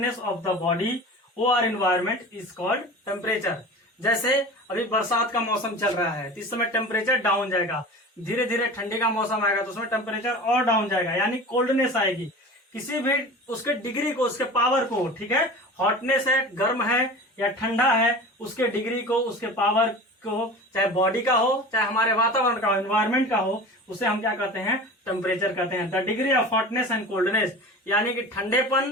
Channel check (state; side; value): normal; both; correlation 0.35